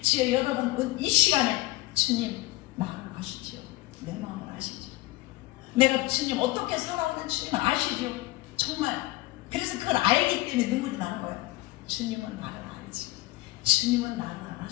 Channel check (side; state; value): right; quieter; 19.0 dB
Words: 여러분 이 시간에 주님 마음을 아시지요. 내 마음을 아시죠. 내가 주님 어떻게 살아오는 주님은 아시죠. 정말 그래서 그걸 알기 때문에 눈물이 나는 거예요. 주님은 나를 알지. 주님은 나를